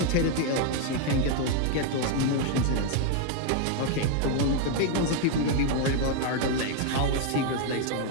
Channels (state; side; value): different; both; correlation 0.00